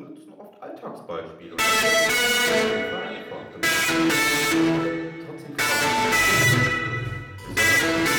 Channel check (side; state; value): both; identical; correlation 1.00